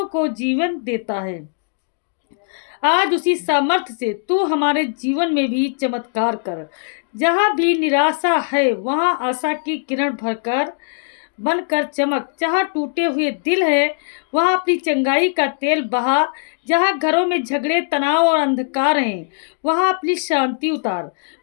को जीवन देता है, आज उसी सामर्थ्य से तू हमारे जीवन में भी चमत्कार कर। जहाँ भी निराशा है वहाँ आशा की किरण भरकर बनकर चमक। जहाँ टूटे हुए दिल है वहाँ अपनी चंगाई का तेल बहा। जहाँ घरों में झगड़े, तनाव और अंधकार हैं वहाँ अपनी शांति उतार।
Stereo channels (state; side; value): silent; right; digital silence